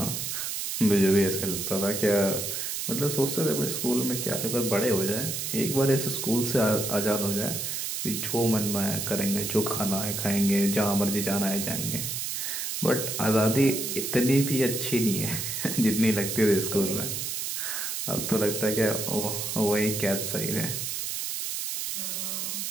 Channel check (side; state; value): right; noise; hiss, 3 dB below the sound